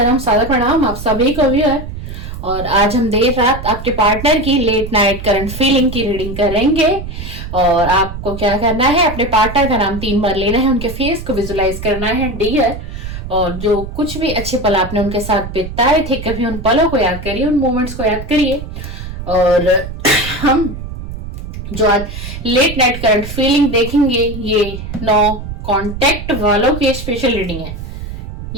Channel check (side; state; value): right; noise; rumble, 9 dB below the sound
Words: सादर प्रणाम आप सभी को भी है। और आज हम देर रात आपके पार्टनर की लेट नाइट करंट फीलिंग की रीडिंग करेंगे। और आपको क्या करना है, अपने पार्टनर का नाम 3 बार लेना है, उनके फेस को विजुलाइज करना है डियर। और जो कुछ भी अच्छे पल आपने उनके साथ बिताए थे, कभी उन पलों को याद करिए, उन मोमेंट्स को याद करिए। और हम जो आज लेट नाइट करंट फीलिंग देखेंगे, ये 9 कॉन्टेक्ट वालों की स्पेशल रीडिंग है।